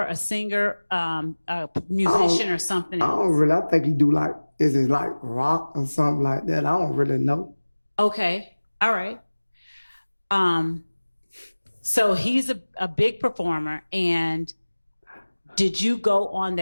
a singer, a musician, or something else? I don't really. I think he do is it like rock or something like that? I don't really know. Okay. All right. So he's a big performer. And did you go on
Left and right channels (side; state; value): both; inverted; correlation -1.00